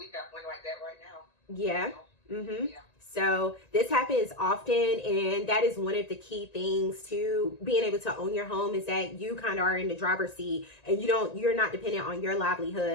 got one like that right now. Yeah. Mm-hmm. Yeah. So this happens often, and that is one of the key things to being able to own your home is that you kind of are in the driver's seat, and you're not dependent on your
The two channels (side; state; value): right; late; 1.9 ms